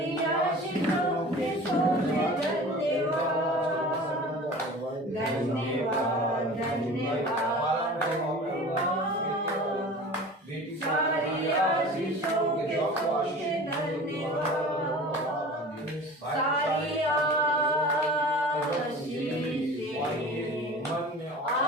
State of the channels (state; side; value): normal; both; correlation 0.39